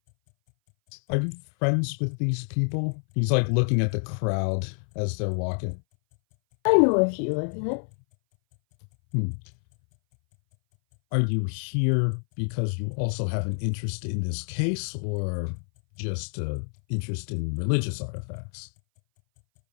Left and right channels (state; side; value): silent; right; 58 dB below the other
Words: Are you friends with these people? He's like looking at the crowd as they're walking. I know a few like that. Are you here because you also have an interest in this case, or just interest in religious artifacts?